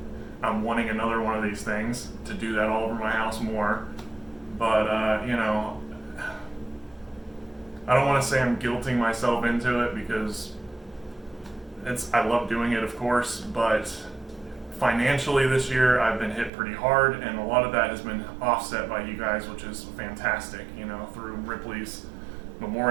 I'm wanting another one of these things to do that all over my house more. But, I don't want to say I'm guilting myself into it because I love doing it, of course, but financially this year I've been hit pretty hard, and a lot of that has been offset by you guys, which is fantastic, through Ripley's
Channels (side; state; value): left; drops out; at 16.5 s